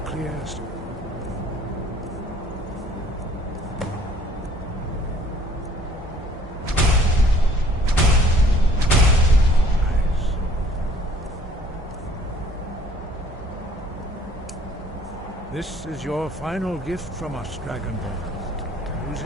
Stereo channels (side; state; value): both; normal; correlation 0.57